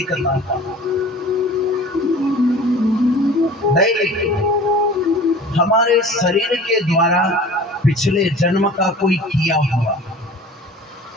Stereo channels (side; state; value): both; normal; correlation 0.43